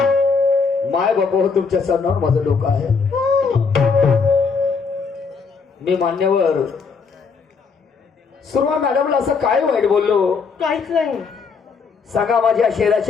माय बाबा तुमच्या सणावर माझं डोकं आहे. मी मान्यवर सुरमा मॅडमला असं काय वाईट बोललो? काहीच नाही. सांगा माझ्या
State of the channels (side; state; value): right; quieter; 5.2 dB